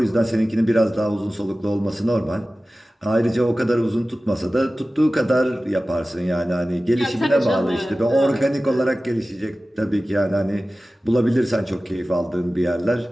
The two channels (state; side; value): normal; both; correlation 0.96